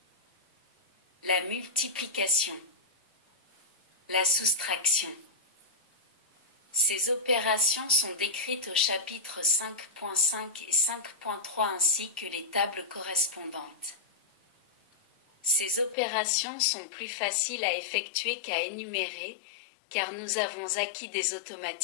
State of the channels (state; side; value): drops out; right; at 16.0 s